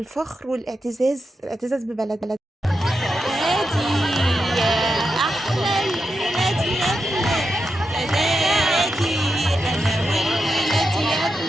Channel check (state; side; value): normal; both; correlation 0.87